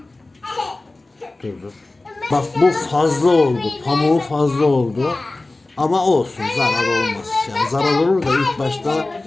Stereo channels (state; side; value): quieter; right; 3.0 dB